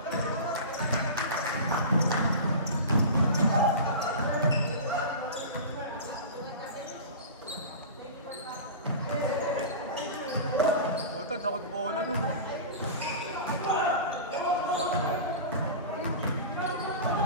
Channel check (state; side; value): inverted; both; correlation -0.31